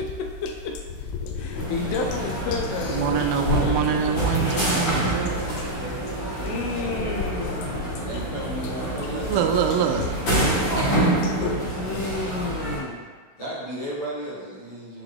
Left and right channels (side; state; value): right; late; 16 ms